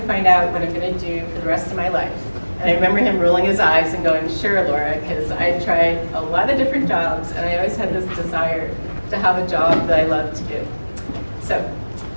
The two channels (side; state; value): both; inverted; correlation -1.00